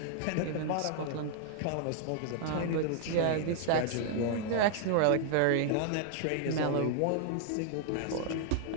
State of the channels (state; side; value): different; both; correlation -0.01